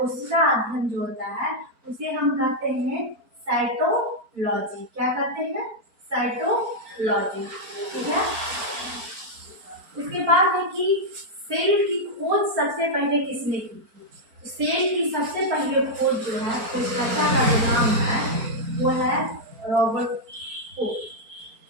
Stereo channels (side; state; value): left; late; 4.4 ms